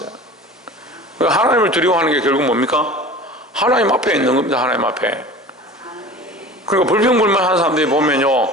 하나님을 두려워하는 게 결국 뭡니까? 하나님 앞에 있는 겁니다. 하나님 앞에. 그러니까 불평불만하는 사람들이 보면요,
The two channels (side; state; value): both; normal; correlation 0.39